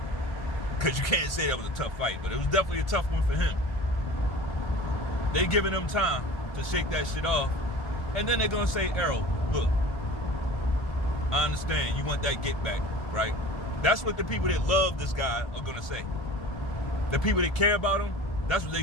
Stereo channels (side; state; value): right; late; 1.4 ms